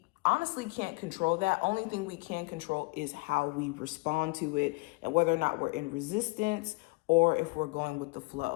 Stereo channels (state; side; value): quieter; right; 26.7 dB